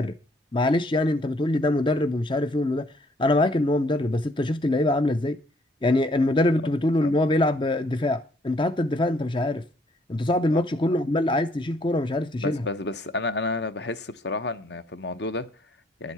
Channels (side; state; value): both; normal; correlation 0.66